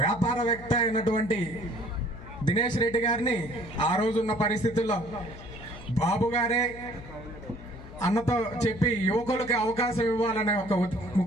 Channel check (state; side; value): noise; left; hum, 15 dB below the sound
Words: వ్యాపారవేత్త అయినటువంటి దినేష్ రెడ్డి గారిని ఆ రోజున్న పరిస్థితుల్లో బాబు గారే అన్నతో చెప్పి యువకులకి అవకాశం ఇవ్వాలనే ఒక